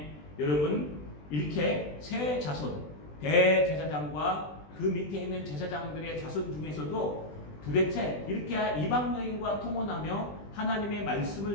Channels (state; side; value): late; right; 20 ms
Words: 여러분 이렇게 세 자손, 대제사장과 그 밑에 있는 제사장들의 자손 중에서도 도대체 이렇게 이방 여인과 통혼하며 하나님의